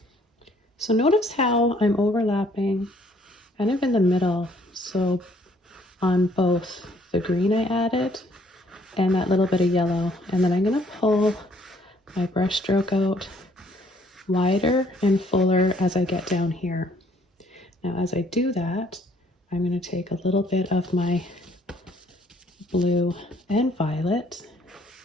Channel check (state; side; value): normal; both; correlation 0.63